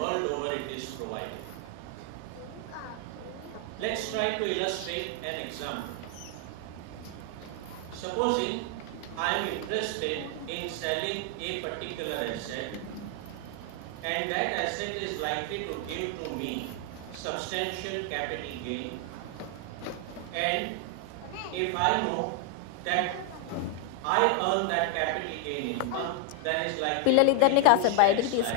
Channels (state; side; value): different; both; correlation 0.00